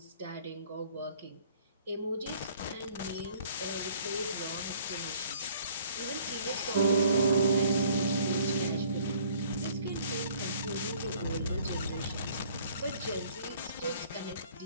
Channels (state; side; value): inverted; both; correlation -0.57